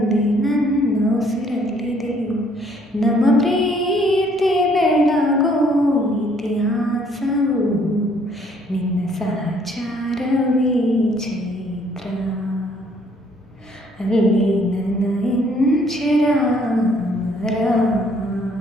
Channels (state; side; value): normal; both; correlation 0.64